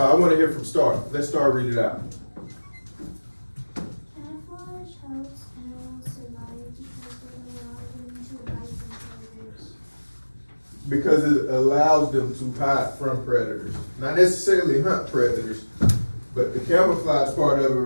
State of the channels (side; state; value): both; inverted; correlation -1.00